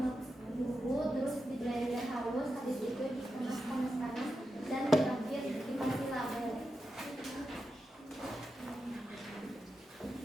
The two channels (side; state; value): both; normal; correlation 0.89